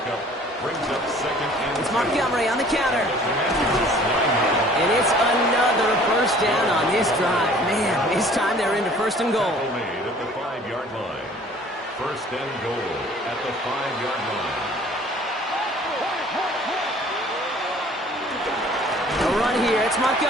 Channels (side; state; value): both; normal; correlation 0.52